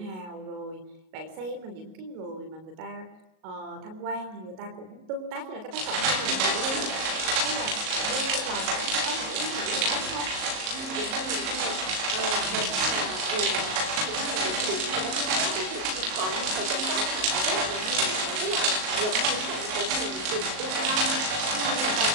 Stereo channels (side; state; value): left; late; 38 ms